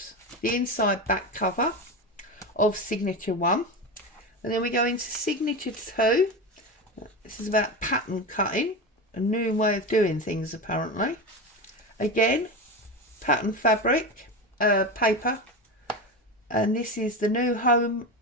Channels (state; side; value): normal; both; correlation 0.22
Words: the inside back cover of signature 1. And then we go into signature 2. This is about pattern cutting, a new way of doing things apparently. Again, pattern fabric, paper, and this is the new home